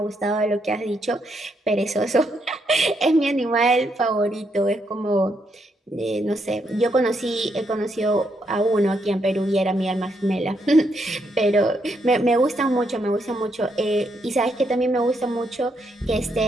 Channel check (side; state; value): both; normal; correlation 0.77